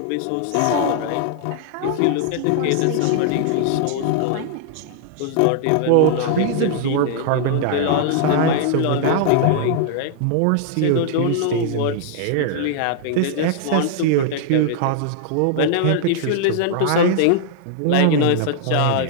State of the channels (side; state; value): both; different; correlation -0.01